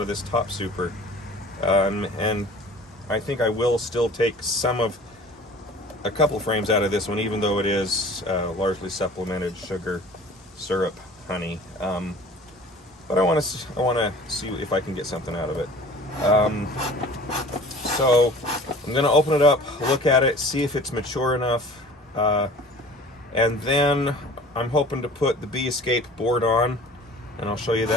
this top super, and I think I will still take a couple frames out of this one, even though it is largely supplemented sugar syrup honey. But I want to see if I can get something out of it. So I'm going to open it up, look at it, see if it's mature enough, and then I'm hoping to put the Bee Escape board on. And I'll show you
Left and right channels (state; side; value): normal; both; correlation 0.45